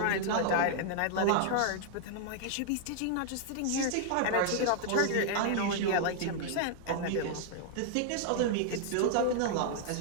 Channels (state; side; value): different; both; correlation 0.00